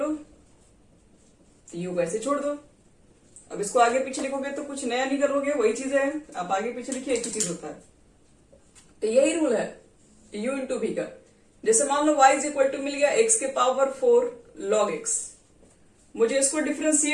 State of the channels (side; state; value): both; identical; correlation 1.00